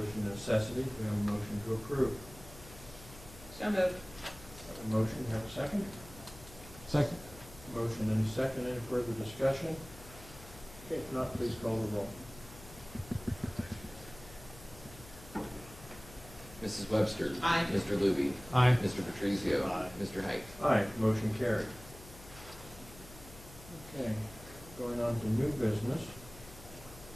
necessity, we have a motion to approve. So moved. Have a motion, have a second? Second, Motion and a second. Any further discussion? Okay, if not, please call the roll. Mrs. Webster. Aye. Mr. Luby. aye. Mr. Patrizio. Aye. Mr. Height. Aye, motion carried. Okay, going on to new business.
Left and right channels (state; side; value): noise; left; hum, 18 dB below the sound